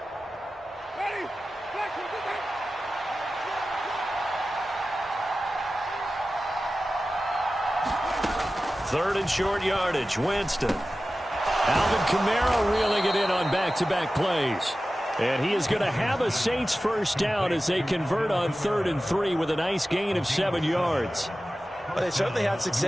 Ready. Black one, get back. 3rd and short yardage, Winston. Alvin Kamara reeling it in on back-to-back plays. And he is going to have a Saints first down as they convert on 3rd and 3 with a nice gain of 7 yards. Well, they certainly had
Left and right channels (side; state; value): both; normal; correlation 0.95